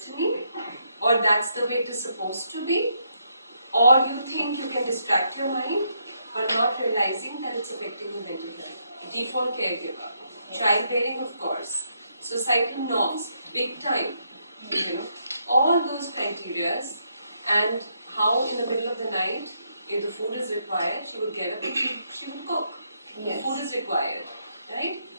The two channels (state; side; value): inverted; both; correlation -0.76